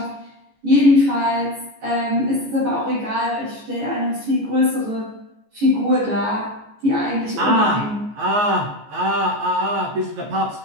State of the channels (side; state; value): left; late; 14 ms